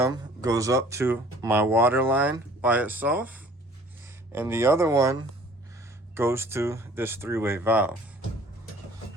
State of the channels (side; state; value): both; normal; correlation 0.52